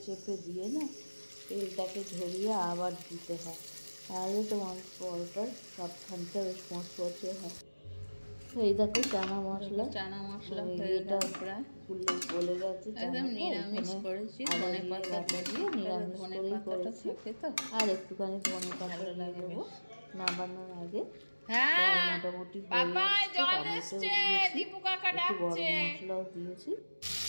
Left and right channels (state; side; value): inverted; both; correlation -1.00